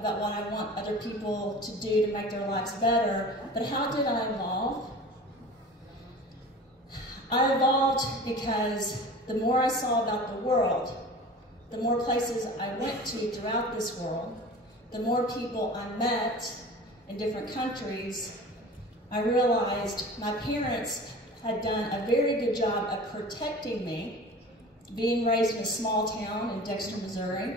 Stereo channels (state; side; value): normal; both; correlation 0.39